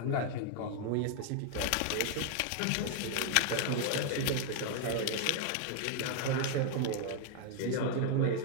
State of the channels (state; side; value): different; both; correlation 0.00